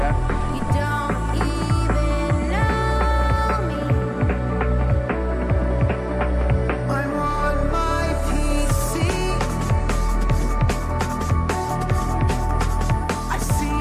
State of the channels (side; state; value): both; identical; correlation 1.00